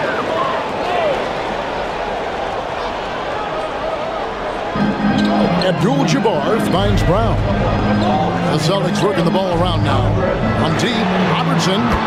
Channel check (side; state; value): both; identical; correlation 1.00